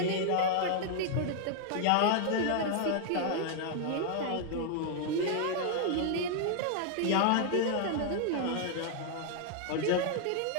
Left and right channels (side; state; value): both; different; correlation 0.00